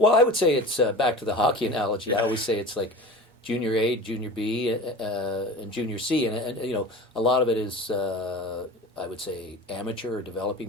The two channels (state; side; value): normal; both; correlation 0.36